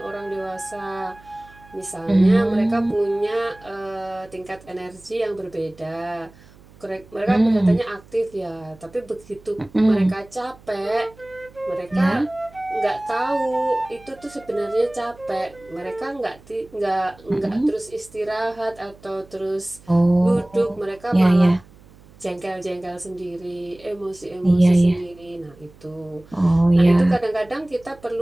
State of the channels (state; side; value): noise; right; hum, 25 dB below the sound